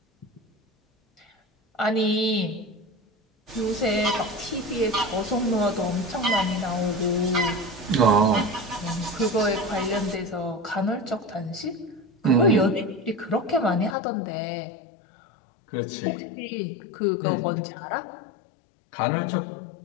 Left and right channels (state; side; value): drops out; right; at 14.0 s